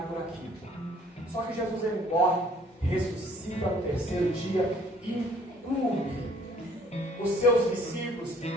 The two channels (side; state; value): both; normal; correlation 0.58